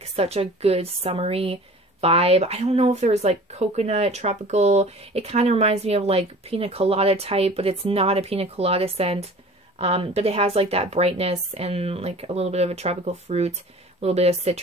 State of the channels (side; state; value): both; normal; correlation 0.43